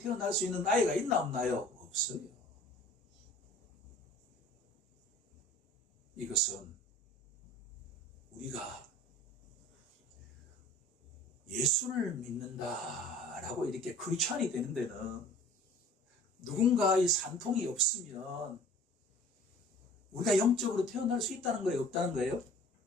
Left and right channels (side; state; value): both; normal; correlation 0.47